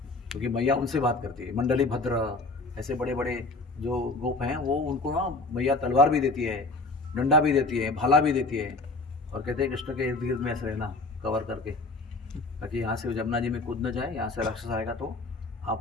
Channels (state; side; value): quieter; right; 3.3 dB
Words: क्योंकि मैया उनसे बात करती है। मंडली भद्र ऐसे बड़े बड़े जो गोप हैं, वो उनको ना मैया तलवार भी देती है, डंडा भी देती है, भाला भी देती है, और कहते हैं कृष्ण के इर्द गिर्द में ऐसे रहना कवर करके, ताकि यहाँ से जमुना जी में कूद न जाए, यहाँ से राक्षस आएगा तो